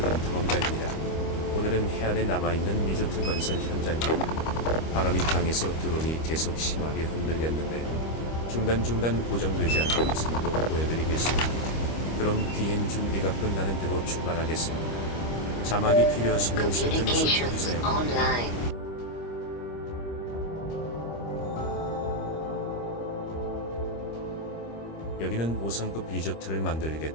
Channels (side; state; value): right; late; 25 ms